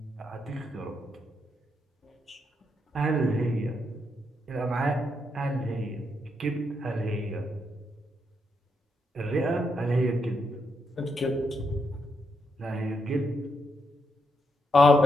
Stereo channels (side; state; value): both; normal; correlation 0.80